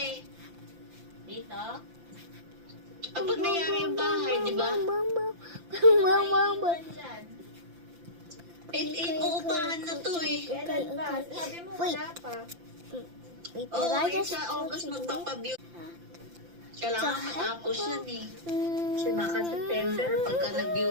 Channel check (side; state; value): left; late; 5.8 ms